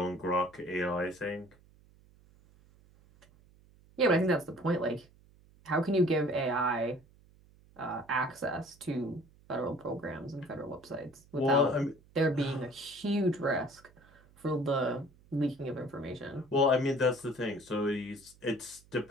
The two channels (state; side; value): noise; right; hum, 27 dB below the sound